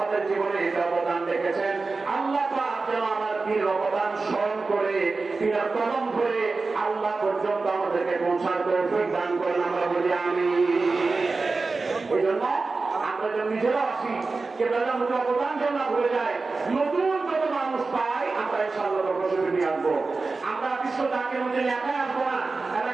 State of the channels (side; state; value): left; quieter; 3.9 dB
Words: জীবনে এই অবদান রেখেছেন। আল্লাহ পাক যেন আমার পীর অবদান স্মরণ করে পীরের কদম ধরে আল্লাহ পর্যন্ত আমাদেরকে পৌঁছার তৌফিক দান করেন, আমরা বলি আমিন। এই জন্য আমরা যেন নিজেরা আসি, কিবলাদান হুজুর অবদান যেন না ভুলে যায়, নতুন যত মানুষ পাই আমরা ইনশাআল্লাহ প্রশংসা নিয়ে আসবো। আমরা বিশ্ব জাকির মধ্যে একাই আসবো না,